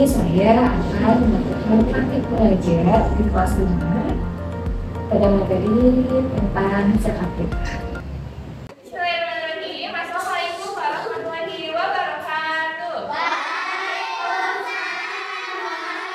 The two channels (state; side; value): identical; both; correlation 1.00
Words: saya akan melakukan praktik belajar di kelas 5 pada materi tentang zakat fitrah. Assalamualaikum warahmatullahi wabarakatuh.